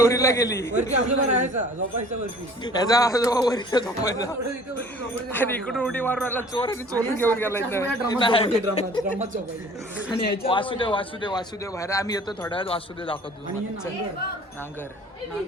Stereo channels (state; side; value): normal; both; correlation 0.49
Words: गेली. याचा आजोबा वरती झोपायचा आणि इकडून उडी मारून आला चोर आणि चोरून घेऊन गेला. वासुदेव बाहेर. आम्ही येतो थोड्या वेळात. वासुदेव दाखवतो. नांगर